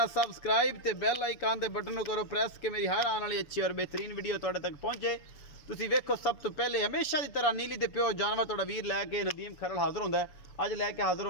सबसक्राइब ते बैल आइकन दे बटन को करो प्रेस के मेरी हर आने वाली अच्छी और बेहतरीन वीडियो तुहाडे तक पहुंचे। तुसी वेखो सब तो पहले हमेशा की तरह नीली दे पियो जानवर तुहाडा वीर लैके नदीम खरल हाजिर होंदा है। अज लैके हाजिर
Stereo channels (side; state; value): right; late; 7.0 ms